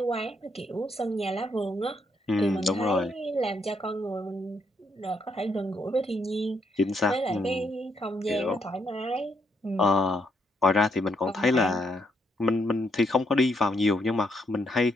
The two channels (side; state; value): both; normal; correlation 0.75